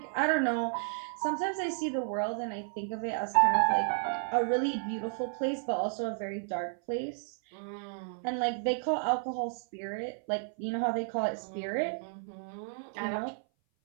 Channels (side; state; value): left; silent; 56 dB below the other